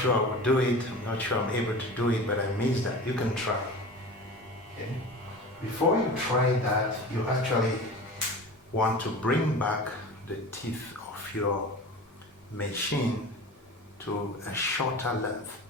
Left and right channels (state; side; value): normal; both; correlation 0.34